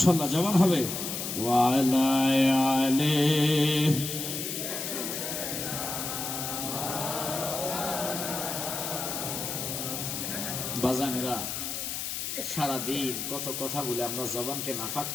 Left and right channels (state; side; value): noise; left; hiss, 4 dB below the sound